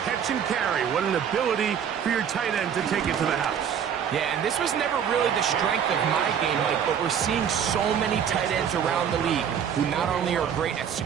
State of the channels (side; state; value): left; quieter; 8.2 dB